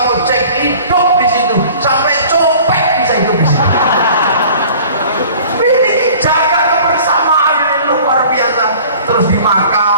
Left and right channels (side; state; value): both; inverted; correlation -0.47